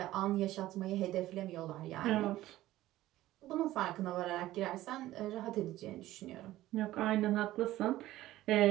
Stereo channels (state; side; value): quieter; left; 15.5 dB